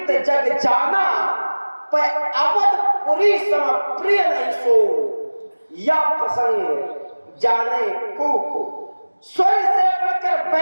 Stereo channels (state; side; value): inverted; both; correlation -1.00